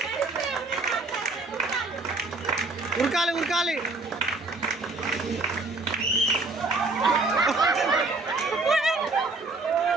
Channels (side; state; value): left; quieter; 3.3 dB